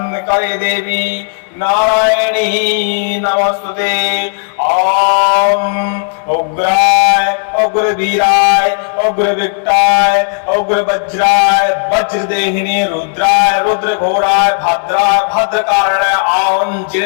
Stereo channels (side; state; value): right; silent; digital silence